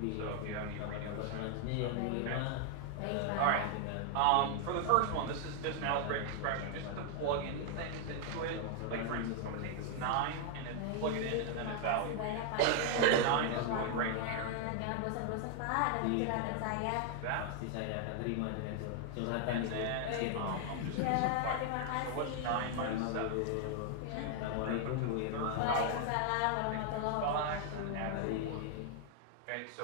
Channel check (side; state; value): both; different; correlation 0.00